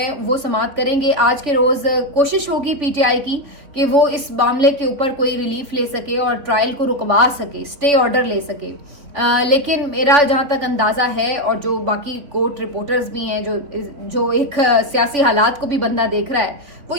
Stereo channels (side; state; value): left; late; 3.5 ms